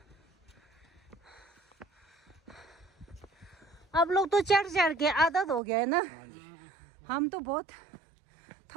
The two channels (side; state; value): left; drops out; at 5.6 s